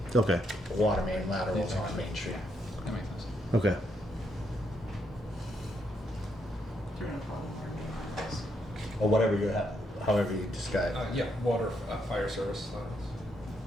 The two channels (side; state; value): both; normal; correlation 0.77